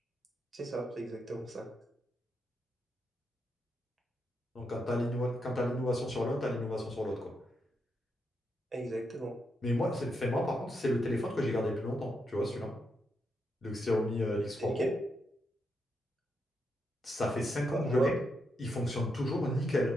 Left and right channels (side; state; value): both; normal; correlation 0.82